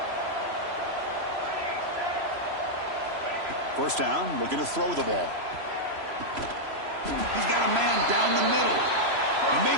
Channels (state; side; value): late; left; 3.0 ms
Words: First down, looking to throw the ball. He's got a man down the middle. And